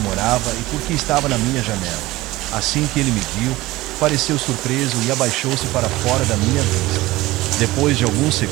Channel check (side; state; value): left; quieter; 18.7 dB